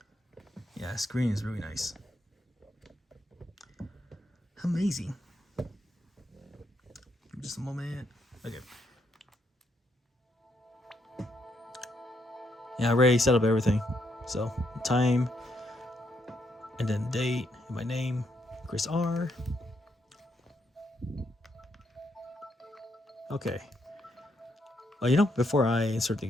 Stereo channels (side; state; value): both; normal; correlation 0.77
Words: Yeah, screen is really nice. Amazing. Just a moment. Okay. Yeah, I already set up everything. So, time, and then date, and my name, Chris R. Okay. Well, before I insert the